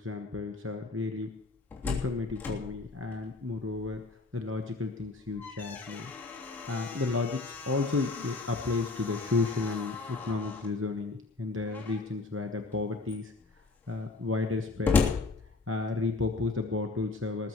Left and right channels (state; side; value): quieter; right; 3.6 dB